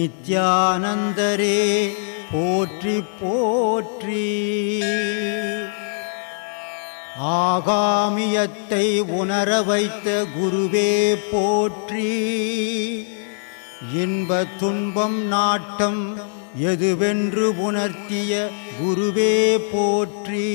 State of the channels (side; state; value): right; silent; digital silence